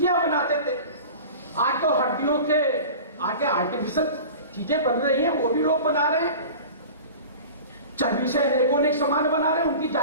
बनाते थे, आज तो हड्डियों के आगे आर्टिफिशियल चीजें बन रही हैं, वो भी लोग बना रहे हैं। चर्बी से अनेक सामान बना रहे हैं, उनकी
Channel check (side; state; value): both; inverted; correlation -0.37